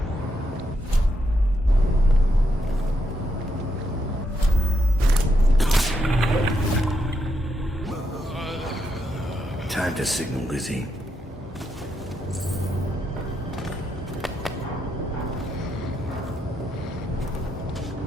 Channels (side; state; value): both; normal; correlation 0.81